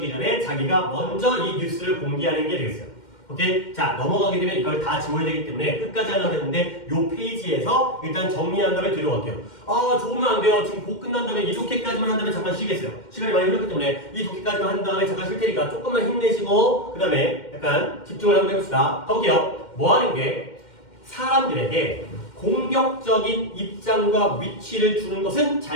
전에 자기가 먼저 이 뉴스를 공개하는 게 되겠어요. 오케이? 자, 넘어가게 되면 이걸 다 지워야 되기 때문에 끝까지 하려고 했는데 요 페이지에서 일단 정리한 다음에 뒤로 갈게요. 아, 좋으면 안 돼요. 지금 곧 끝난 다음에 이 독해까지만 한 다음에 잠깐 쉬겠어요. 시간이 많이 흘렀기 때문에 이 독해까지만 한 다음에 잠깐 쉴 테니까 조금만 힘내시고 그 다음에 약간 집중을 한번 해봅시다. 가볼게요. 뭐 하는 게 사람들에게 공격적인 입장과 위치를 주는 것은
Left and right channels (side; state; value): right; late; 2.1 ms